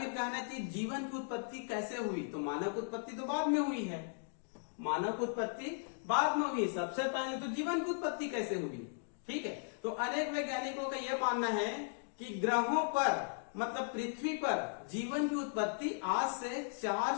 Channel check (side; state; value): right; silent; digital silence